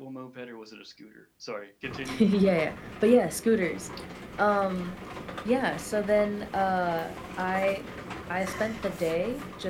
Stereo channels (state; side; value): identical; both; correlation 1.00